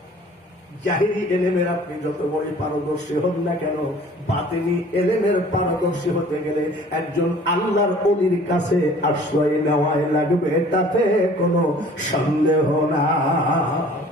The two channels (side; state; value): both; normal; correlation 0.50